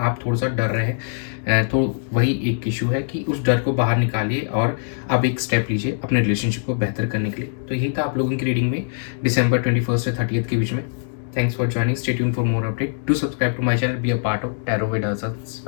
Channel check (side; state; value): right; silent; digital silence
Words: थोड़ा सा डर रहे हैं, तो वही एक इशू है कि उस डर को बाहर निकालिए और अब एक स्टेप लीजिए अपने रिलेशनशिप को बेहतर करने के लिए। तो यही था आप लोगों की रीडिंग में December 21 से 30 के बीच में। Thanks for joining. Stay tuned for more update. Do subscribe to my channel. Be a part of Tarot with Us